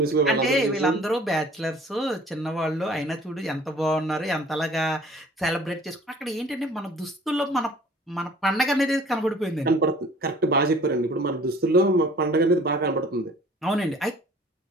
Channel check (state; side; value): normal; both; correlation 0.51